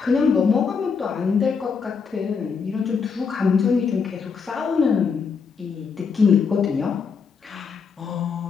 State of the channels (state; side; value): quieter; right; 5.7 dB